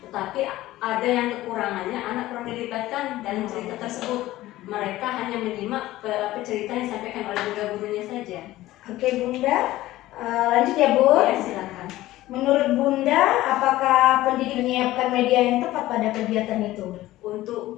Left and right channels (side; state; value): right; quieter; 16.2 dB